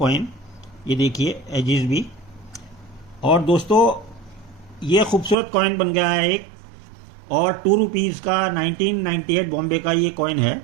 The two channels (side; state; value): left; drops out; at 5.4 s